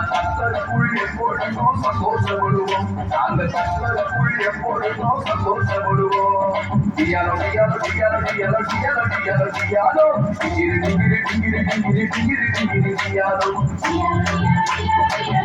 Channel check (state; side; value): identical; both; correlation 1.00